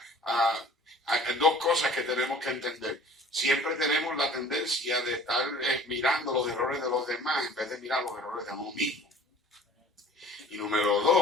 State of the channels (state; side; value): normal; both; correlation 0.47